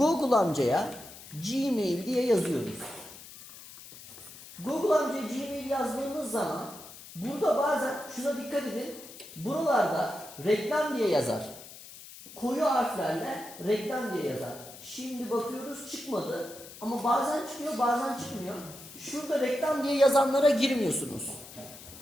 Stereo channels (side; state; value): left; noise; hiss, 16 dB below the sound